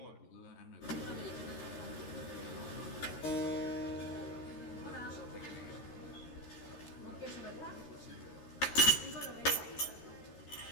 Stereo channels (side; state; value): right; late; 13 ms